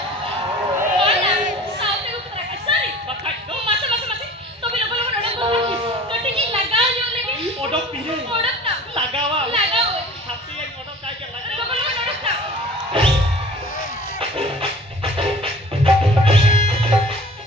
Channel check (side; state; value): both; normal; correlation 0.44